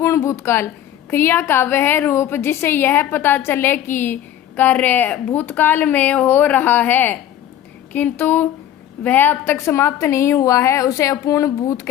भूतकाल। क्रिया का वह रूप जिससे यह पता चले कि कार्य भूतकाल में हो रहा है किंतु वह अब तक समाप्त नहीं हुआ है उसे अपूर्ण भूत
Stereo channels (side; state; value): right; quieter; 11.3 dB